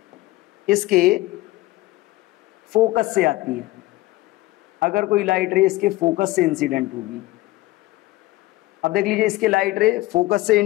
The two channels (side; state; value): right; quieter; 18.6 dB